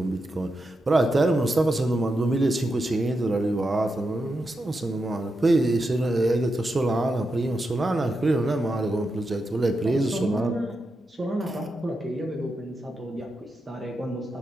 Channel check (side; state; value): both; normal; correlation 0.87